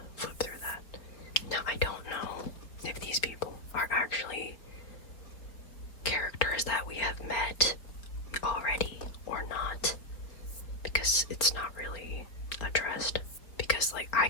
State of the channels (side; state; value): right; late; 3.9 ms